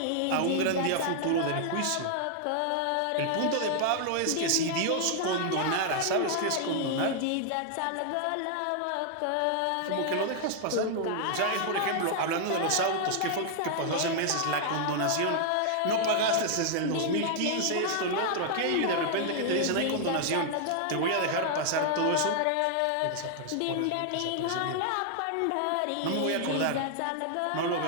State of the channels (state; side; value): different; both; correlation 0.00